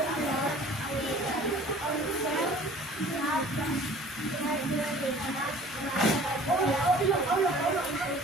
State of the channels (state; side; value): normal; both; correlation 0.49